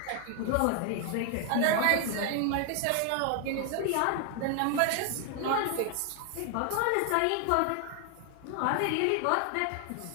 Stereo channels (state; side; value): different; both; correlation 0.00